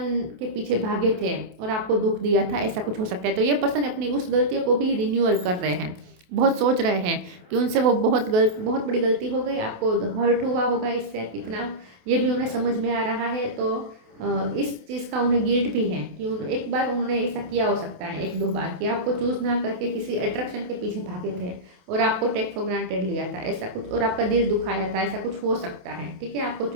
के पीछे भागे थे और आपको दुख दिया था, ऐसा कुछ हो सकता है। तो ये पर्सन अपनी उस गलतियों को भी रिन्यूअल कर रहे हैं, बहुत सोच रहे हैं कि उनसे वो बहुत बड़ी गलती हो गई, आपको हर्ट हुआ होगा इससे कितना, ये भी उन्हें समझ में आ रहा है। तो इस चीज़ का उन्हें गिल्ट भी है कि एक बार उन्होंने ऐसा किया हो सकता है, एक दो बार, कि आपको चूज ना करके किसी अट्रैक्शन के पीछे भागे थे और आपको टेक फॉर ग्रांटेड लिया था, ऐसा कुछ, और आपका दिल दुखाया था, ऐसा कुछ हो सकता है, ठीक है। आपको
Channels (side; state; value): left; late; 27 ms